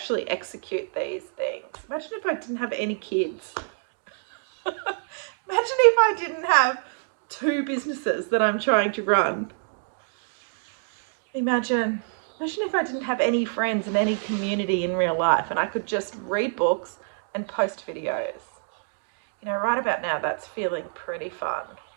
execute these things. Imagine if I didn't have any kids. Imagine if I didn't have 2 businesses that I'm trying to run. Imagine if I didn't have any friends and any community in real life and I could just read books and post videos. You know, right about now, that's feeling pretty fun.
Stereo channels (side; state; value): left; silent; digital silence